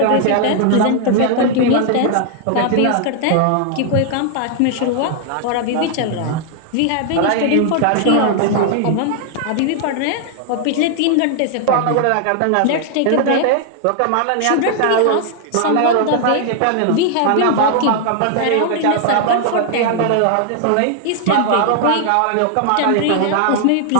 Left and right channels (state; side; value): different; both; correlation 0.00